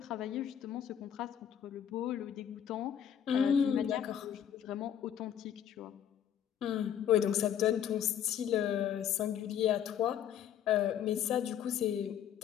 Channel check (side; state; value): right; quieter; 9.5 dB